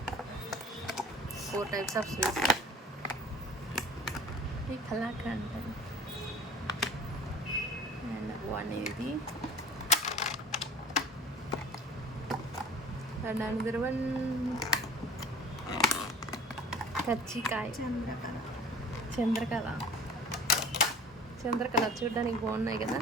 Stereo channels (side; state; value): both; normal; correlation 0.45